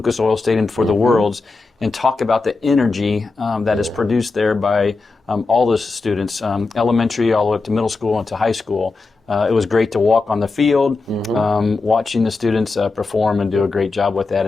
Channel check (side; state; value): right; quieter; 3.8 dB